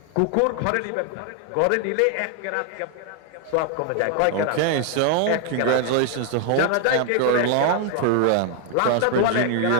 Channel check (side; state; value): both; different; correlation 0.00